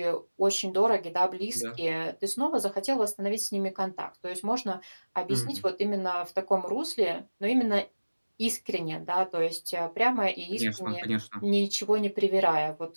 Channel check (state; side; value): inverted; both; correlation -1.00